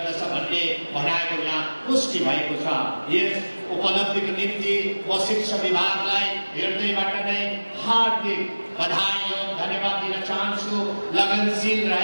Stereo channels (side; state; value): both; inverted; correlation -1.00